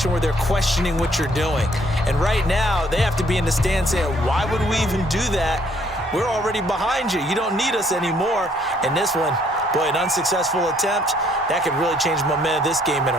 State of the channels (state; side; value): normal; both; correlation 0.65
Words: where they're questioning what you're doing. And right now, they have to be in the stand saying, why would we even do that? We're already behind you. You don't need us anymore. And this one, boy, an unsuccessful attempt, that could really change the momentum of this game in